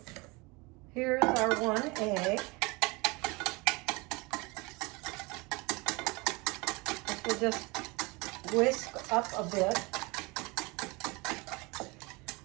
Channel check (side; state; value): left; quieter; 25.9 dB